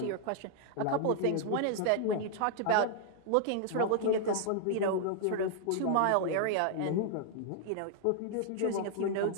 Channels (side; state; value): both; different; correlation -0.01